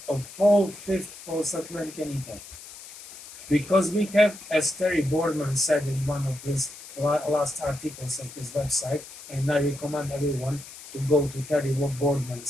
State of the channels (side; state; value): left; noise; hiss, 16 dB below the sound